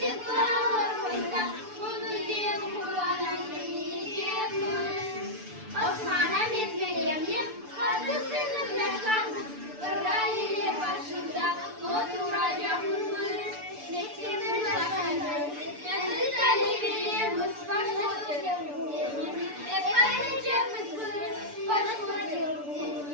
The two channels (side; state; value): left; late; 6.9 ms